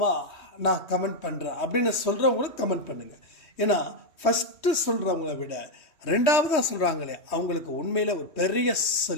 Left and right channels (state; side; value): late; right; 3.1 ms